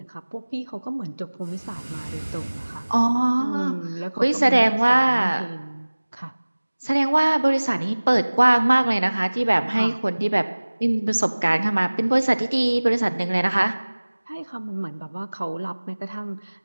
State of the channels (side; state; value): both; inverted; correlation -1.00